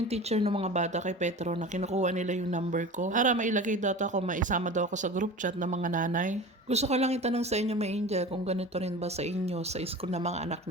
teacher ng mga bata kay Petro na kinukuha nila yung number ko para mailagay data ko, maisama daw ako sa group chat ng mga nanay. Gusto ko lang itanong sa inyo, may Angel, kung ganito rin ba sa inyo, sa school ng mga anak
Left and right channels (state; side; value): normal; both; correlation 0.34